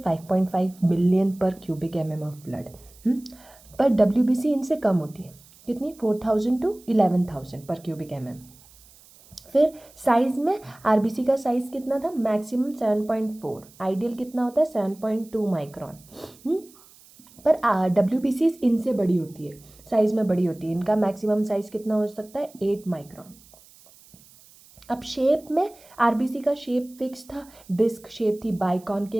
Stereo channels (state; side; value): noise; right; hiss, 25 dB below the sound